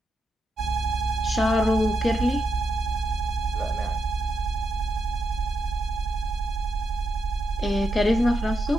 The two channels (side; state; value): both; normal; correlation 0.84